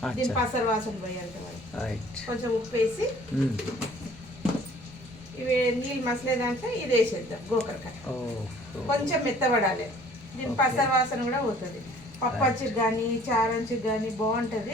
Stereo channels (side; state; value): both; normal; correlation 0.53